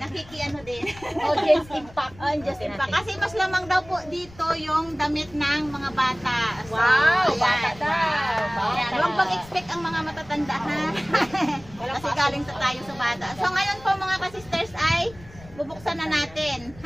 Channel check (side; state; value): left; noise; rumble, 21 dB below the sound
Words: din. Audience impact. Audience impact. Kasi mas lamang daw po dito yung damit ng mga bata. So, wow, ayan. bata daw. Ayan, huwag mag-expect ang mga matatanda ha. Kasi galing sa tayo sa bata. So ngayon po mga ka-sisters ay bubuksan na natin.